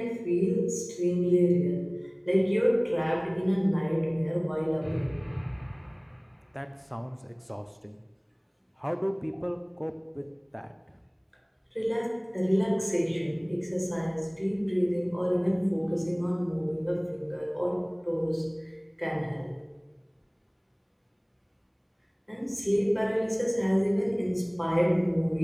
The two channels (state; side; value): identical; both; correlation 1.00